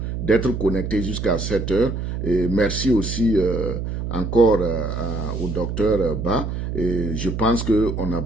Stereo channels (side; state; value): right; noise; hum, 4 dB below the sound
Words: d'être connectés jusqu'à 7 heures. Et merci aussi encore au docteur Ba. Et je pense qu'on a